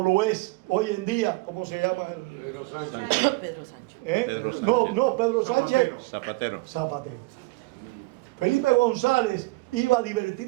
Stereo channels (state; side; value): quieter; left; 23.9 dB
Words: es hoy en día. ¿Cómo se llama? Pedro Sánchez. Pedro Sánchez. No, Pedro Sánchez. Zapatero. Felipe González iba a